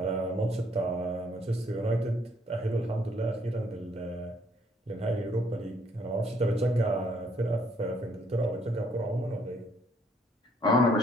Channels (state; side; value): normal; both; correlation 0.67